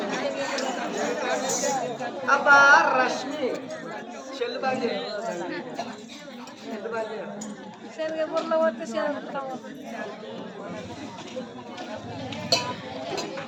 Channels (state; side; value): identical; both; correlation 1.00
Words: అబ్బా రష్మి చెల్లు బండి